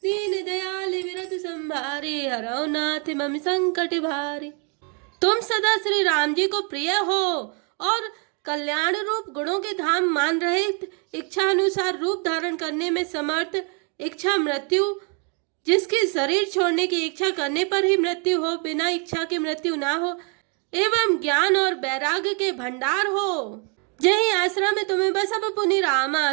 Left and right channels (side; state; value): left; quieter; 37.1 dB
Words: दीन दयाल विरत संभारे, हरौ नाथ मम संकट भारे। तुम सदा श्री राम जी को प्रिय हो और कल्याण रूप गुणों के धाम मान रहे, इच्छा अनुसार रूप धारण करने में समर्थ, इच्छा मृत्यु, जिसकी शरीर छोड़ने की इच्छा करने पर ही मृत्यु हो, बिना इच्छा की मृत्यु ना हो, एवं ज्ञान और वैराग्य के भंडार हो। जही आश्रम में तुम्हें बसब पुनि रामा,